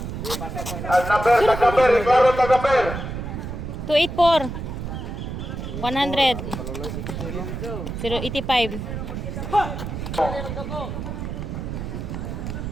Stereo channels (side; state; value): right; noise; rumble, 6 dB below the sound